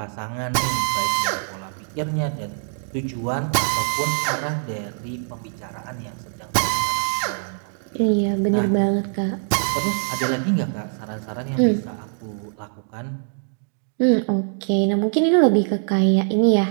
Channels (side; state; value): left; silent; digital silence